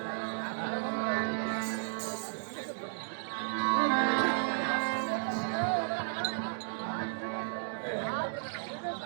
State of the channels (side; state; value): left; silent; digital silence